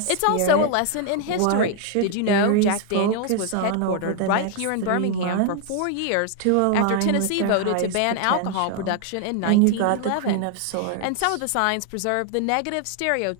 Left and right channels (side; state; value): both; different; correlation 0.00